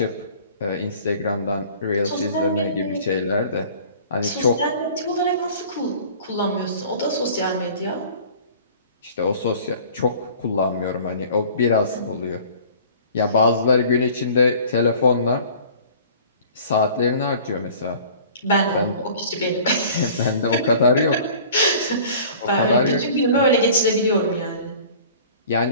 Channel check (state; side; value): inverted; both; correlation -0.47